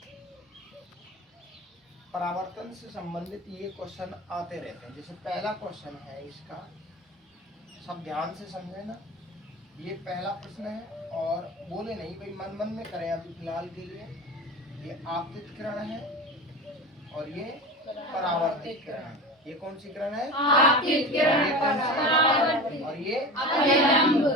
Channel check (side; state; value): both; normal; correlation 0.30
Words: परावर्तन से संबंधित ये क्वेश्चन आते रहते हैं। जैसे पहला क्वेश्चन है इसका, सब ध्यान से समझे ना। ये पहला प्रश्न है और बोले नहीं भाई, मन मन में करें अभी फिलहाल के लिए। ये आपतित किरण है और ये परावर्तित किरण है। ये कौन सी किरण है? आपतित किरण। और ये